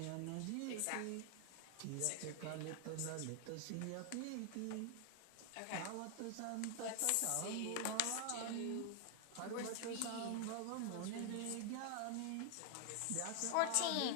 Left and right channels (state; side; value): different; both; correlation 0.00